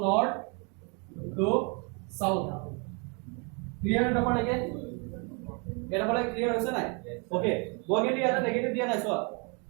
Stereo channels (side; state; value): left; quieter; 34.6 dB